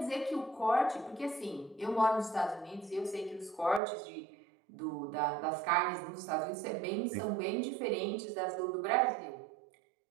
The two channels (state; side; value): drops out; left; at 3.8 s